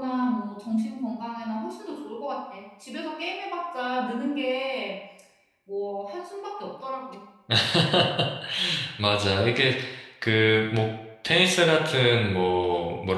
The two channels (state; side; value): identical; both; correlation 1.00